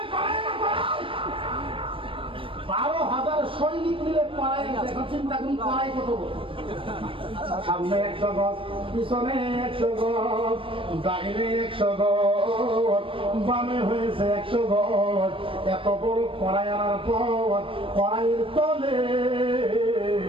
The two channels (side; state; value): left; late; 0.25 ms